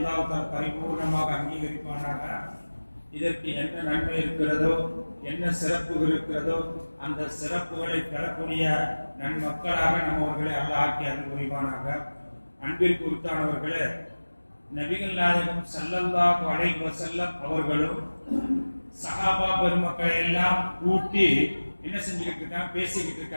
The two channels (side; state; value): both; inverted; correlation -1.00